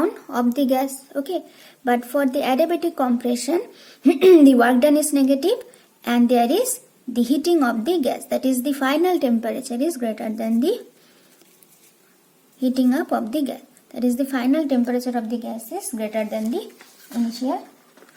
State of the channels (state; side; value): identical; both; correlation 1.00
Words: of the gas. Okay, but for the adiabatic compression, the work done is negative, and there is the heating of the gas, that is the final temperature is greater than the heating up of the gas. That is the final temperature of the gas is greater than the initial